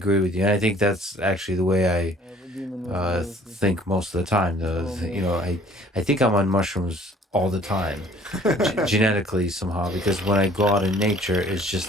with you, and I think that's actually the way I think most of the time. You know, I think I'm on mushrooms all the time, genetically somehow, because when I go out in nature, it's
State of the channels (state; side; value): normal; both; correlation 0.55